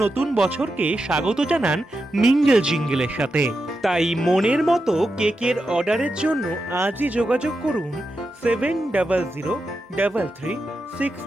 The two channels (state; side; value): normal; both; correlation 0.88